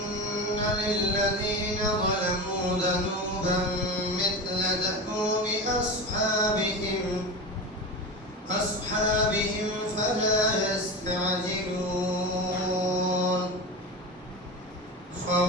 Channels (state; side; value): normal; both; correlation 0.25